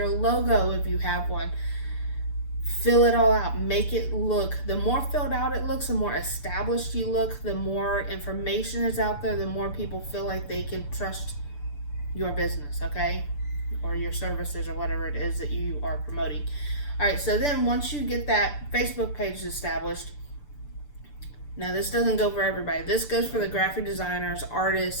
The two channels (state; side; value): late; right; 6.9 ms